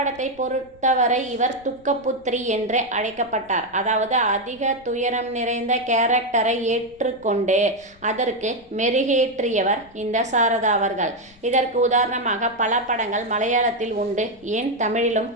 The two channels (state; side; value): noise; left; rumble, 27 dB below the sound